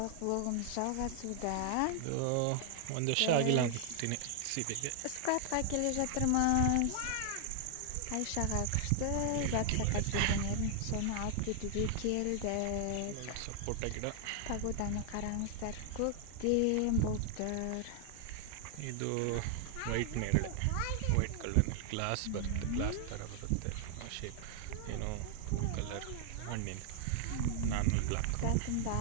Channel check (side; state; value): both; different; correlation 0.00